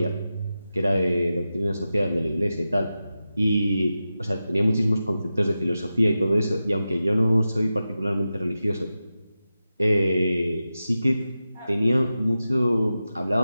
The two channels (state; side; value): inverted; both; correlation -0.92